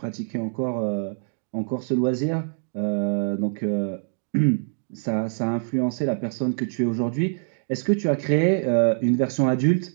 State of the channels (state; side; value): silent; left; digital silence